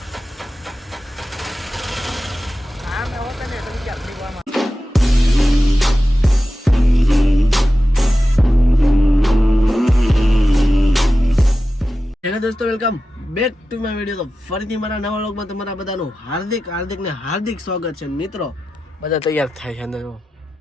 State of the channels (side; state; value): both; normal; correlation 0.93